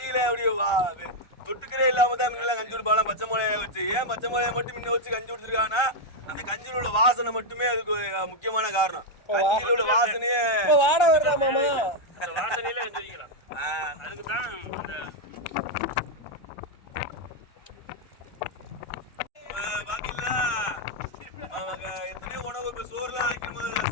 அப்படியே தொட்டுக்கிறே இல்லாம தான் முன்னெல்லாம் கஞ்சி குடிப்பாங்க பச்சை மிளகாய வச்சு. ஏன் பச்சை மிளகாய மட்டும் முன்ன வச்சு கஞ்சி குடிச்சிருக்காங்கன்னா, அந்த கஞ்சியில உள்ள வாசனை மட்டுமே அதுக்கு முக்கியமான காரணம். கஞ்சியில உள்ள வாசனையே வாட வருதா மாமா, வாசனையில வச்சிருக்கலாம். அதுக்கு தான் பாத்தீங்களா எத்தனையோ உணவு. இப்போ சோறுலாம் வைக்கும்,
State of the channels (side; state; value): right; late; 1.3 ms